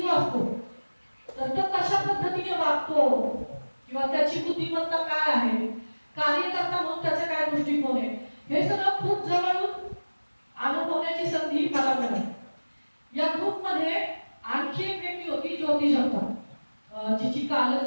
असतो तर तो कशा पद्धतीने वागतो किंवा त्याची बुद्धिमत्ता काय आहे, कार्यकर्ता म्हणून त्याचा काय दृष्टिकोन आहे, हे सगळं खूप जवळून अनुभवण्याची संधी मला मिळाली. या ग्रुपमध्ये आणखी एक व्यक्ती होती, ज्योती जगताप, जिची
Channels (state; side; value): inverted; both; correlation -1.00